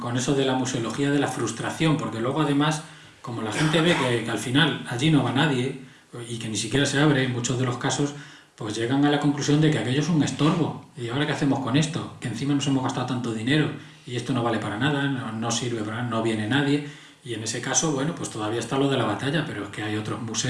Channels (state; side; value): identical; both; correlation 1.00